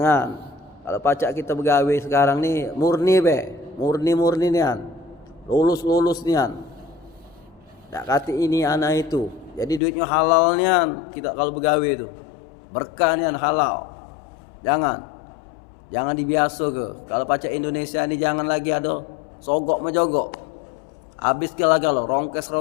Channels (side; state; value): right; drops out; at 9.8 s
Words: Kalau pacak kita begawe sekarang ni murni murni nian. Lulus nian. Tak kata ini anak itu. Jadi duitnya halal nian kita kalau begawe itu. Berkah nian halal. Jangan dibiasa ke. Kalau pacak Indonesia ni jangan lagi ada sogok menjogok. Habis ke laga lo, rongkes